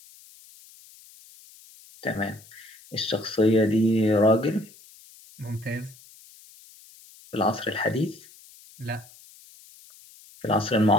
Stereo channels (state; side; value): noise; left; hiss, 24 dB below the sound